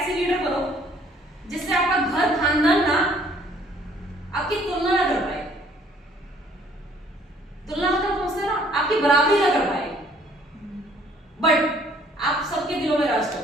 लीडर बनो जिससे आपका घर खानदान ना आपकी तुलना ना कर पाए। तुलना मतलब समझते ना, आपकी बराबरी ना कर पाए, बट आप सबके दिलों में राज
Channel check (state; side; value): normal; both; correlation 0.60